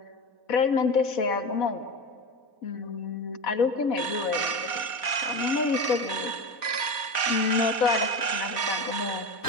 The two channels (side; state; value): right; late; 4.1 ms